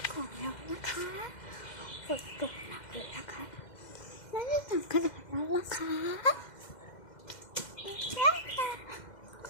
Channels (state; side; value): late; right; 2.1 ms